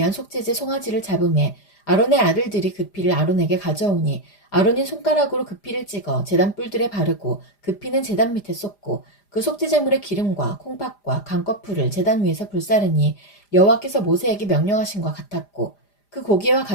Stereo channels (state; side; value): late; right; 5.0 ms